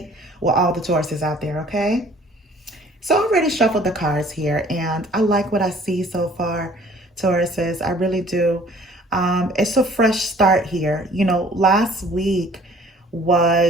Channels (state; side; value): normal; both; correlation 0.53